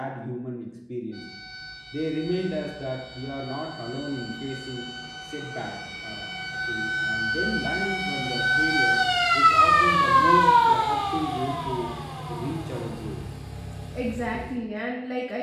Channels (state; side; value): identical; both; correlation 1.00